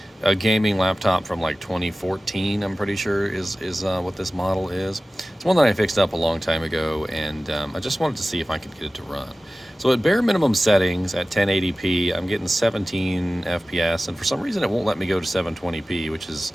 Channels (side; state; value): both; normal; correlation 0.96